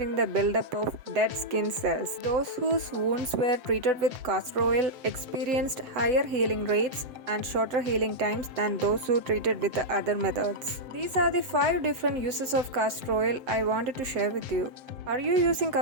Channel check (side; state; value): left; late; 7.6 ms